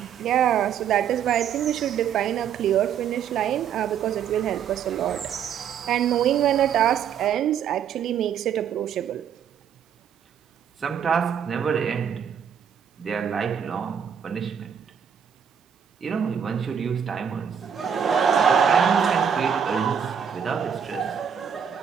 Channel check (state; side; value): quieter; left; 8.0 dB